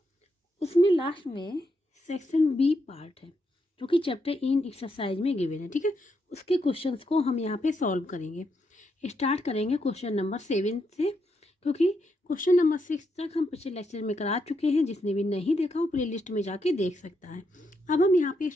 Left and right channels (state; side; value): normal; both; correlation 0.80